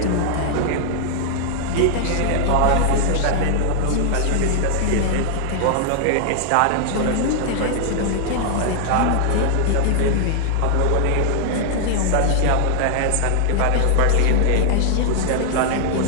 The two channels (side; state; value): both; different; correlation -0.01